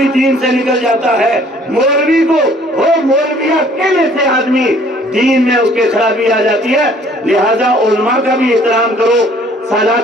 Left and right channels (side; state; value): both; normal; correlation 0.57